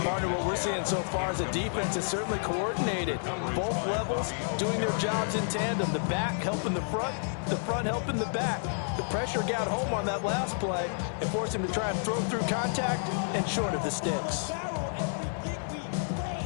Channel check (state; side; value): silent; right; 58 dB below the other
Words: Partner, what we're seeing so far is a defense is certainly coordinated. Both levels doing their jobs in tandem. The back helping the front helping the back. The pressure got home on that last play and forced him to try and throw through contact and short of the sticks.